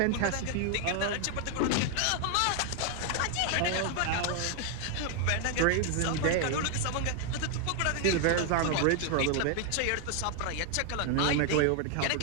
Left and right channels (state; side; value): different; both; correlation 0.00